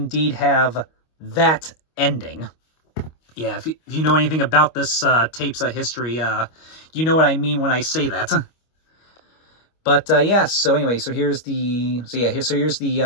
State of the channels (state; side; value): late; right; 25 ms